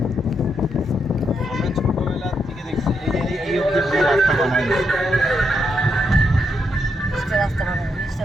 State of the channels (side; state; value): both; normal; correlation 0.80